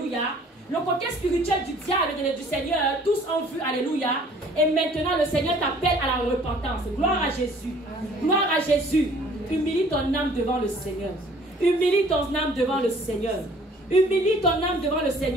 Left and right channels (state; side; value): normal; both; correlation 0.55